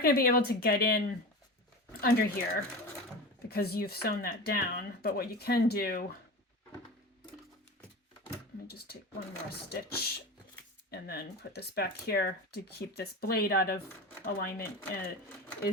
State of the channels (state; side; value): normal; both; correlation 0.29